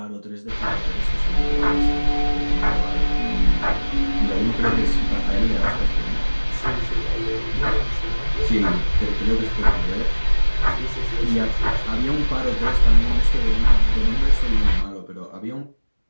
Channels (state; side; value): inverted; both; correlation -1.00